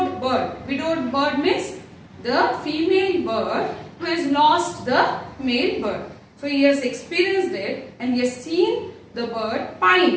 bird. Widowed bird means the female bird who has lost the male bird. So he has experienced it and he has seen the bird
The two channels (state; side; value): identical; both; correlation 1.00